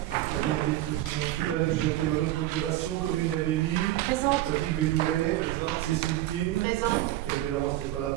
Valérie Petit non plus, Valérie Jacquet me donne procuration, Corinne Gabelli, Patrick Bédouret, Cécile Tine, Hervé Laurence n'est pas là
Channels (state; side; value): quieter; left; 15.0 dB